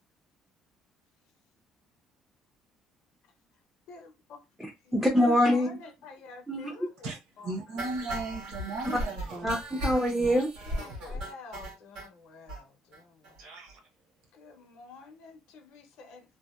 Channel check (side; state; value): both; normal; correlation 0.78